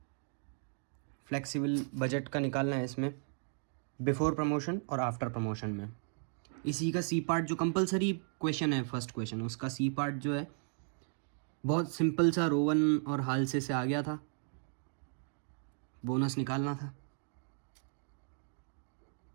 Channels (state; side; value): silent; left; 54 dB below the other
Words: फ्लेक्सिबल बजट का निकालना है इसमें, बिफोर प्रमोशन और आफ्टर प्रमोशन में। इसी का सी पार्ट जो कंपलसरी क्वेश्चन है, फर्स्ट क्वेश्चन, उसका सी पार्ट जो है बहुत सिंपल सा, रोवन और हालसे से आ गया था, बोनस निकालना था।